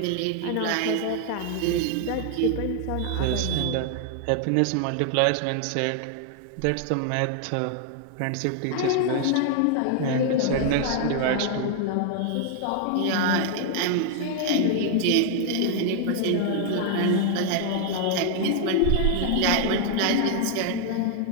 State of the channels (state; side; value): different; both; correlation 0.00